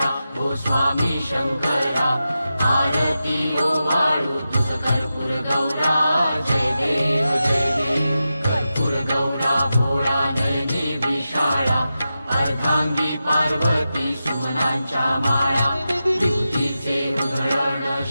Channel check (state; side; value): inverted; both; correlation -0.91